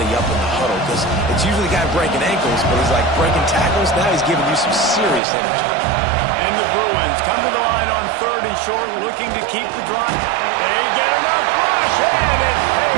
up in the huddle because it's usually the guy breaking ankles, but he's like breaking tackles. Now he's giving you some serious energy. And the Bruins come to the line on 3rd and short, looking to keep the drive. They get enough rush, and it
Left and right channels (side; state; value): left; drops out; at 5.2 s